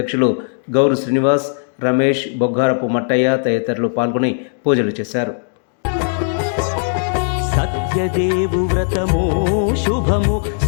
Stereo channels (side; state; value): right; silent; digital silence